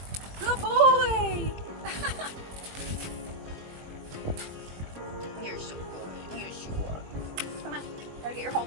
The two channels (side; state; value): left; late; 21 ms